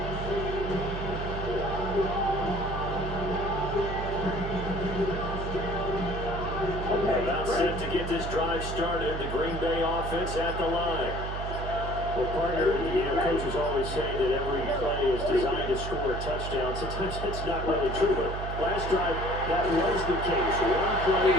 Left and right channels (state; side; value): noise; right; hum, 5 dB below the sound